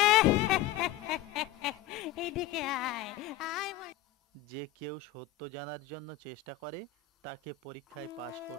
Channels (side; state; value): right; quieter; 12.4 dB